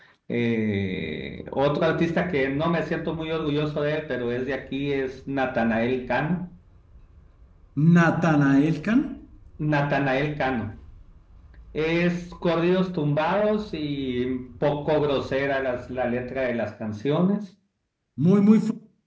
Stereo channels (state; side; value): identical; both; correlation 1.00